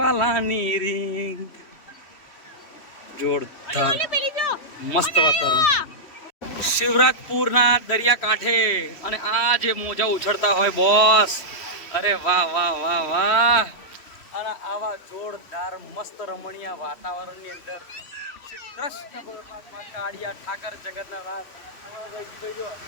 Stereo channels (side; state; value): right; late; 3.1 ms